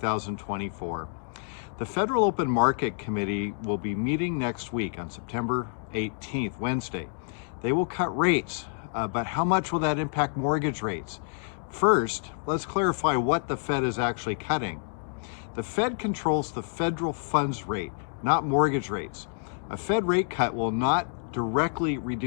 The Federal Open Market Committee will be meeting next week on September 18th, Wednesday. They will cut rates, but how much will that impact mortgage rates? First, let's clarify what the Fed is actually cutting. The Fed controls the federal funds rate, not mortgage rates. A Fed rate cut will not directly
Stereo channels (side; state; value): right; silent; digital silence